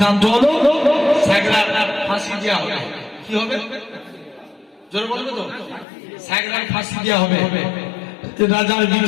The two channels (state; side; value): drops out; right; at 5.9 s